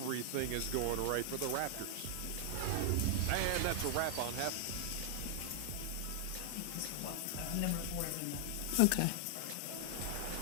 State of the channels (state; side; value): different; both; correlation 0.00